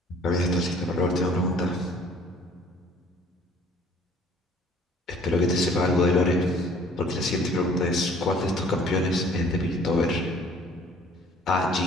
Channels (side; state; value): both; normal; correlation 0.54